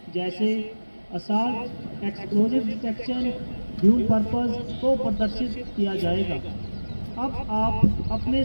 जैसे assault, explosive detection, dual purpose को प्रदर्शित किया जाएगा। अब आप अपने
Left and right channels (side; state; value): both; inverted; correlation -1.00